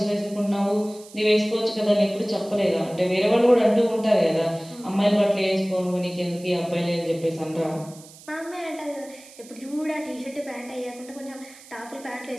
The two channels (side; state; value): right; noise; hiss, 21 dB below the sound